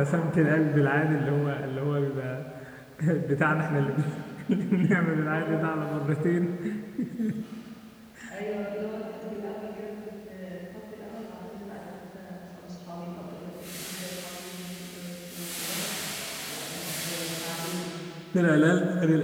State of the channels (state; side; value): identical; both; correlation 1.00